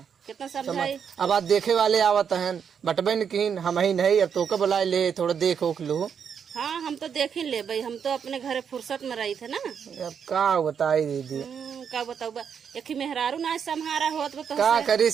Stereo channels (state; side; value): quieter; left; 7.3 dB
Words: कितना समझाई अब आज देखे वाले आवत हैं बटबन किन हम ही नहीं अब तो के बुलाए ले थोड़ा देख ओख लू हाँ हम तो देख ही ले भाई हम तो अपने घरे फुर्सत में रही थे ना अब का बताई दीदी का बताऊ एक ही मेहरारू ना संहारा होत तो का करी